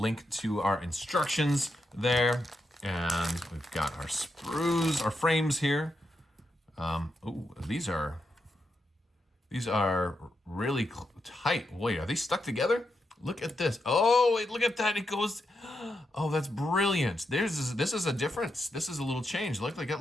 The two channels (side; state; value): both; normal; correlation 0.84